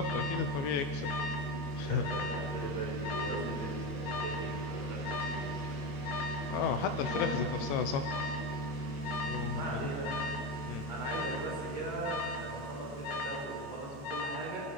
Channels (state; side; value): late; right; 22 ms